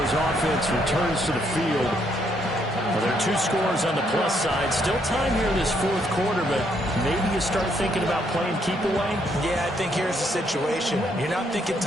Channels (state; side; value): normal; both; correlation 0.72